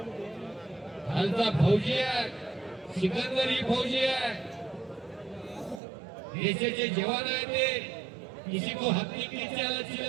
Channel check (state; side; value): drops out; left; at 5.8 s